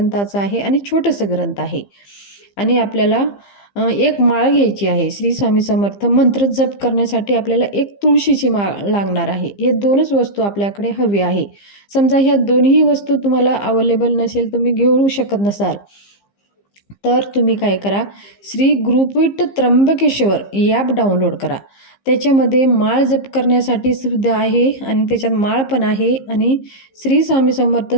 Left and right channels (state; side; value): late; right; 15 ms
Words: आहे आणि छोटंसं ग्रंथ आहे. आणि आपल्याला एक माळ घ्यायची आहे. श्री स्वामी समर्थ मंत्र जप करण्यासाठी आपल्याला एक तुळशीची माळ लागणार आहे. हे 2च वस्तू आपल्याकडे हवी आहे. समजा ह्या दोन्ही वस्तू तुम्हाला अवेलेबल नसेल, तुम्ही घेऊ शकत नसाल, तर तुम्ही काय करा, श्री गुरुपीठ त्र्यंबकेश्वर ॲप डाउनलोड करा. त्याच्यामध्ये माळ जप करण्यासाठी सुद्धा आहे आणि त्याच्यात माळ पण आहे आणि श्री स्वामी समर्थ